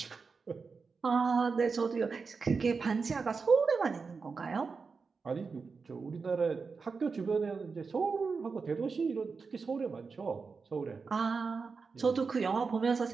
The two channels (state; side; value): quieter; left; 4.9 dB